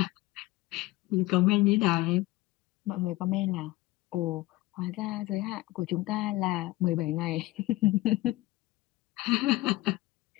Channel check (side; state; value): right; quieter; 18.8 dB